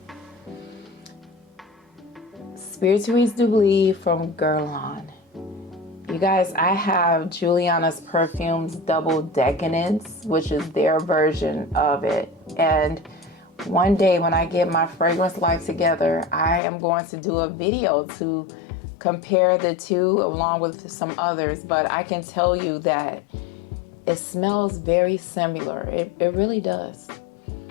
Spirituese from Guerlian. You guys, I have Juliana's Perfume's Double Decants, which is their version of it. And one day when I get my fragrance life together, I am going to do a video to compare the two along with some others. But I can tell you that it smells very similar. It really does.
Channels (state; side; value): drops out; right; at 16.6 s